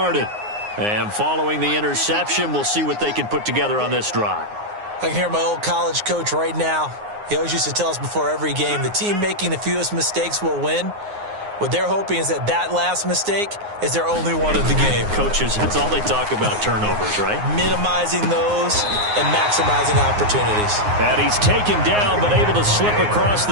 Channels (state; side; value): late; left; 9.6 ms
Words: And following the interception, we'll see what they can put together on this drive. I can hear my old college coach right now. He always used to tell us before every game, the team making the fewest mistakes will win. What they're hoping is that that last mistake is their only one of the game. Coaches, that's all they talk about, turnovers, right? Minimizing those and maximizing opportunities. And he's taken down but able to slip across